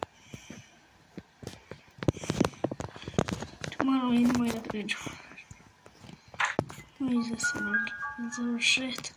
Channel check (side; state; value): both; identical; correlation 1.00